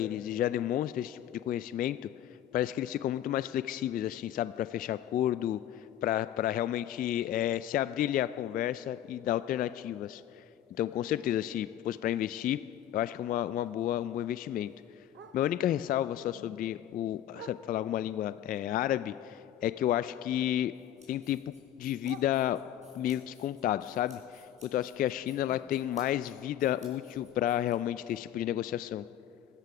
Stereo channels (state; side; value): quieter; right; 11.5 dB